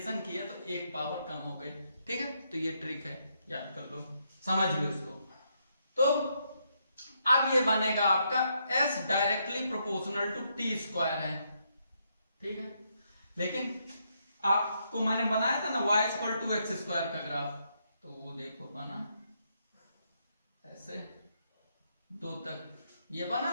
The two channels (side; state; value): both; inverted; correlation -0.77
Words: किया तो एक पावर कम हो गई। ठीक है, तो ये ट्रिक है, याद कर लो, समझ लो इसको। तो अब ये बनेगा आपका s directly proportional to t square है। ठीक है, लेकिन आपको मैंने बनाया था ना y equal to x square का ग्राफ, तो वो देखो बना ऐसे 2 तक, ये